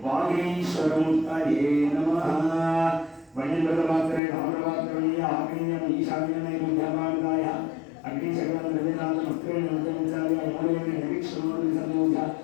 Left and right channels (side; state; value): right; drops out; at 4.2 s